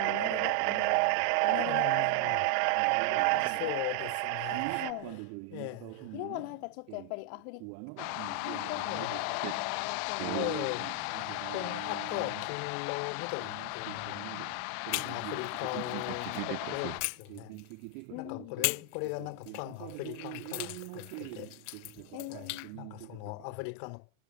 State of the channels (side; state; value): both; different; correlation 0.00